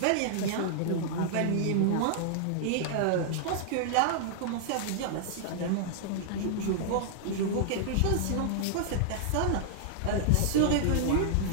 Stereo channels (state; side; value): different; both; correlation -0.01